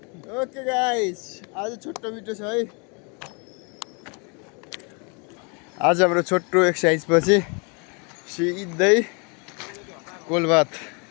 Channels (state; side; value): quieter; right; 34.1 dB